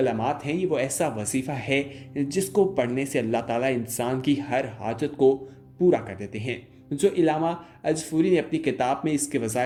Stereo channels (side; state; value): both; identical; correlation 1.00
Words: हैं, ये वो ऐसा वजीफ़ा है जिसको पढ़ने से अल्लाह ताला इंसान की हर हाजत को पूरा कर देते हैं। जो इलामा अजफूरी ने अपनी किताब में इसके